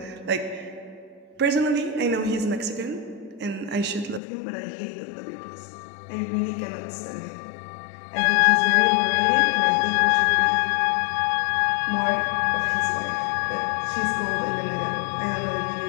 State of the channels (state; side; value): drops out; right; at 4.2 s